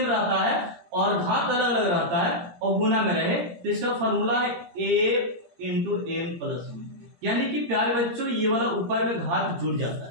रहता है और घात अलग अलग रहता है और गुना में रहे, तो इसका फॉर्मूला है a इंटू एम प्लस 1, यानी कि प्यारे बच्चों ये वाला ऊपर में घात जुड़ जाता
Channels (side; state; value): left; late; 17 ms